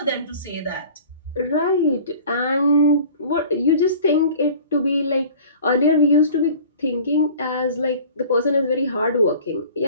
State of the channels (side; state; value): both; inverted; correlation -0.45